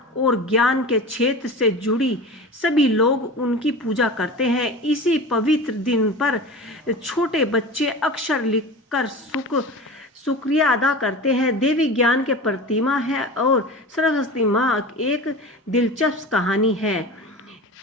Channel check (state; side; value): normal; both; correlation 0.32